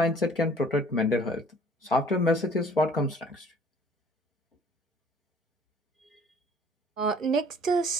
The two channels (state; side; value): normal; both; correlation 0.54